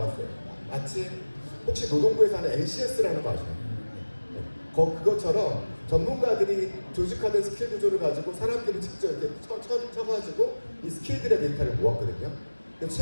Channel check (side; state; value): both; inverted; correlation -1.00